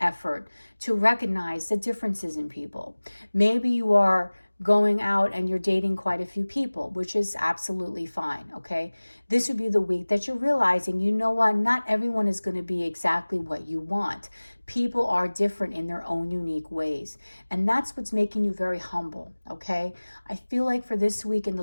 effort to recognize the differences in people. Maybe you are going out and you're dating quite a few people, which is absolutely fine, okay? This would be the week that you're realizing, you know what, not everyone is going to be exactly what you want. People are different in their own unique ways. And that's what's making you very humble, okay? I feel like for this week in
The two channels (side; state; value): both; inverted; correlation -1.00